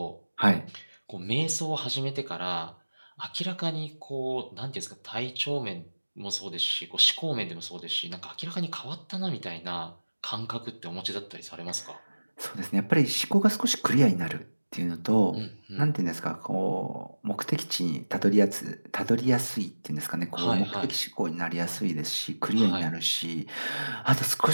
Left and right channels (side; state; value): both; inverted; correlation -1.00